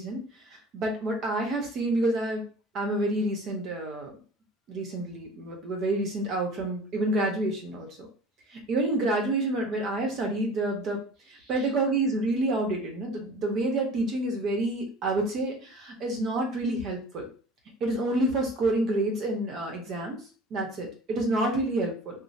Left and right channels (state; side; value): normal; both; correlation 0.43